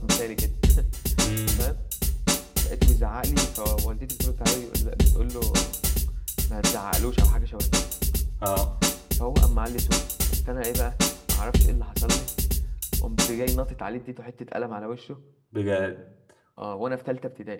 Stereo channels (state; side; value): identical; both; correlation 1.00